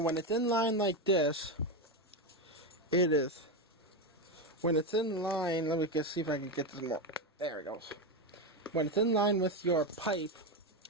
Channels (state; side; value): normal; both; correlation 0.11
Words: it's in line like this, it is. When it's in line, let me just see if I can get this more. There it goes. When it's in line with your pipe,